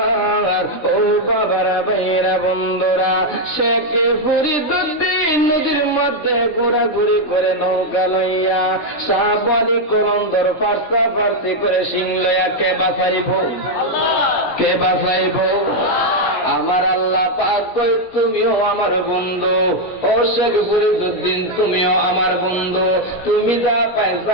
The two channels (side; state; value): right; late; 17 ms